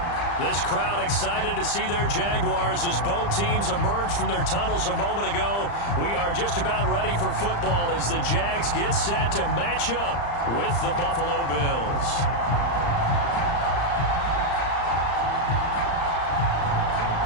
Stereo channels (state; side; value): late; right; 35 ms